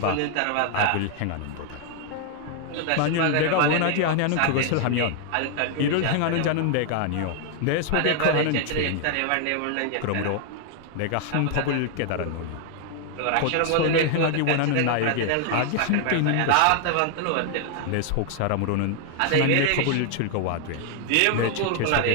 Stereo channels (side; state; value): both; different; correlation 0.00